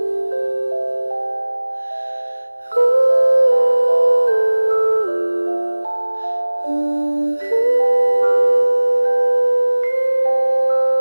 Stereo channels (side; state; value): both; inverted; correlation -1.00